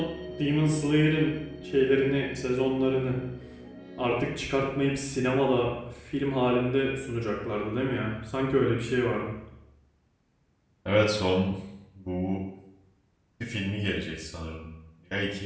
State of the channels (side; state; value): both; identical; correlation 1.00